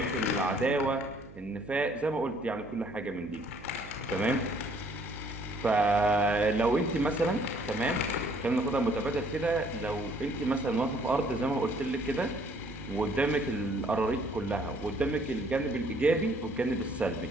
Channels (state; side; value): noise; right; hum, 18 dB below the sound